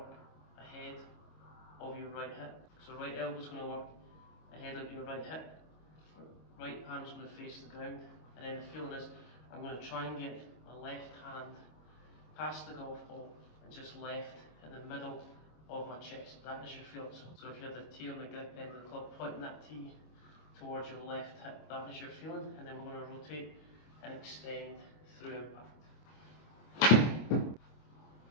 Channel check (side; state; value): right; late; 25 ms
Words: ahead of your right hip. So right elbow is going to work ahead of your right hip. Right palm is going to face the ground, and then the feeling is I'm going to try and get my left hand past the golf ball and just left in the middle of my chest. That is your feeling. So if you have the tee on the grip end of the club, pointing that tee towards your left hip, that is your feeling, and then we're going to rotate and extend through impact.